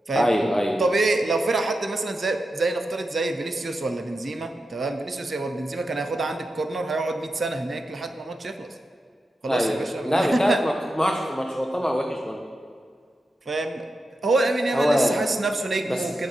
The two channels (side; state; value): both; normal; correlation 0.89